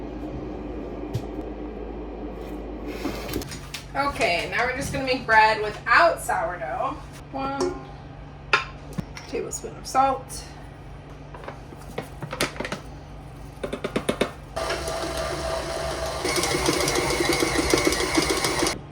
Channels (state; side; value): identical; both; correlation 1.00